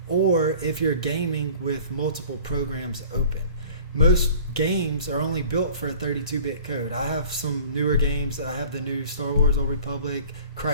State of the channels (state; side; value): inverted; both; correlation -0.46